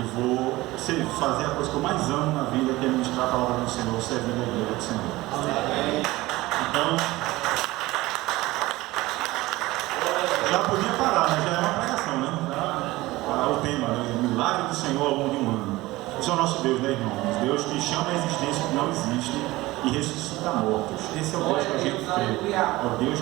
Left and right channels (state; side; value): quieter; left; 19.1 dB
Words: vou fazer a coisa que eu mais amo na vida, que é ministrar a palavra do Senhor, servindo a igreja do Senhor. Então, já podia parar, mas já é uma pregação, né? O tema, né? O milagre do Senhor ao longo de um ano. Esse é o nosso Deus, né, irmãos? Deus que chama a existência que não existe e ressuscita mortos. Esse é o Deus que a gente crê. É o Deus